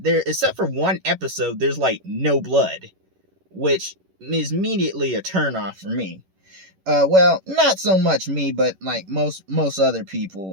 except for one episode. There's like no blood, which is immediately a turnoff for me. Well, not so much me, but like most other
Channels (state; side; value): late; left; 11 ms